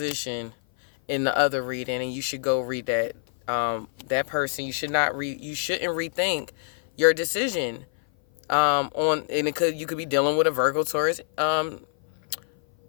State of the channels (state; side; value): silent; right; 56 dB below the other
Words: in the other reading, and you should go read that. That person, you shouldn't rethink your decision. You could be dealing with a Virgo,